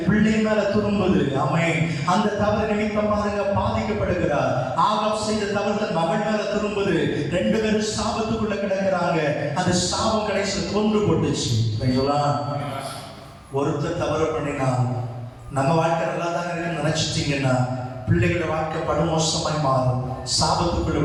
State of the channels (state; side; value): identical; both; correlation 1.00